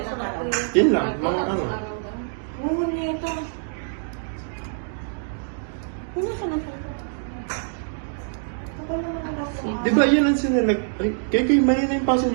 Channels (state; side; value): silent; left; digital silence